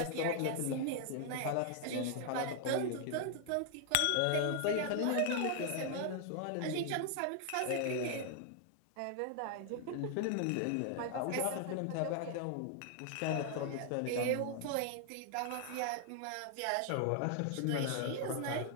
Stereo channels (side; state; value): both; different; correlation 0.00